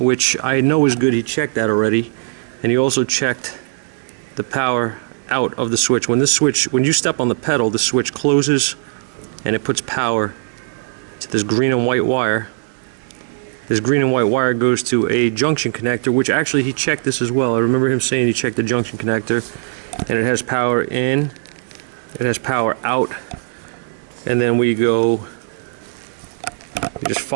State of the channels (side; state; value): left; silent; digital silence